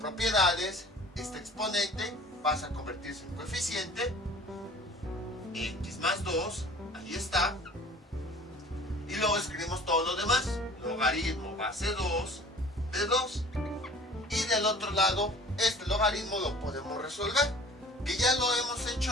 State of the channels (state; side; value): normal; both; correlation 0.47